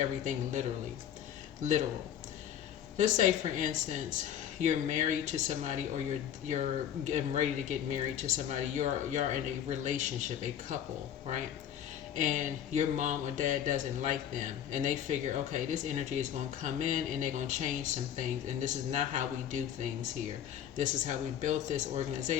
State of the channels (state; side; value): quieter; right; 9.9 dB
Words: literal. Let's say, for instance, you're married to somebody, or you're getting ready to get married to somebody. You're in a relationship, a couple, right? And your mom or dad doesn't like them, and they figure, okay, this energy is going to come in and they're going to change some things, and this is not how we do things here. This is how we built this